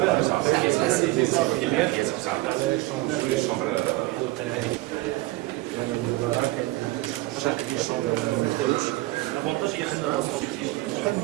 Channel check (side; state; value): left; quieter; 20.0 dB